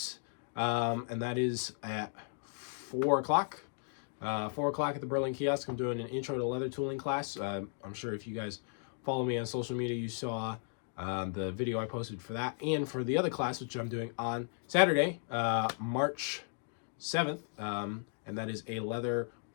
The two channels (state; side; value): silent; right; 54 dB below the other